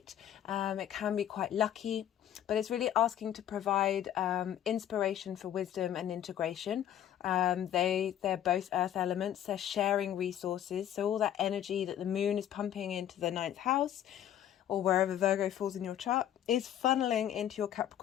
It can be quite lucky, but it's really asking to provide inspiration for wisdom and integration. They're both earth elements. They're sharing resources. So all that energy that the moon is pumping into the 9th house, or wherever Virgo falls in your chart, is funneling into your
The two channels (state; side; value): quieter; right; 10.9 dB